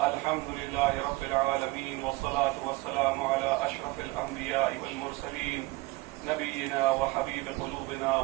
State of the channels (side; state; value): left; quieter; 21.9 dB